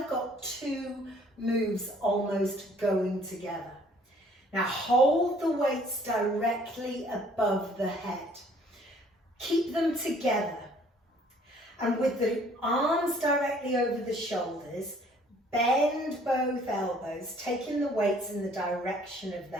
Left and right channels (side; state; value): both; normal; correlation 0.58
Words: of got two moves almost going together. Now hold the weights directly above the head. Keep them together. And with the arms directly over the shoulders, bend both elbows, taking the weights in the direction of the